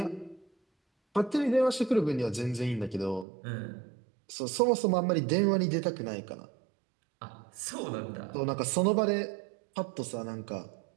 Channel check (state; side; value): drops out; left; at 3.2 s